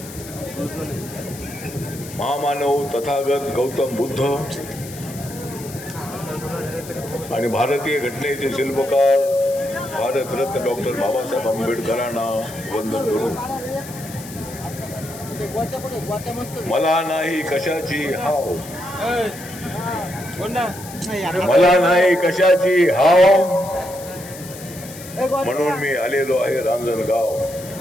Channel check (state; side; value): noise; left; hiss, 15 dB below the sound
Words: महामानव तथागत गौतम बुद्ध आणि भारतीय घटनेचे शिल्पकार भारतरत्न डॉक्टर बाबासाहेब आंबेडकरांना वंदन करून मला नाही कशाची हाव, मला नाही कशाची हाव, म्हणून मी आलेलो आहे रांजणगाव.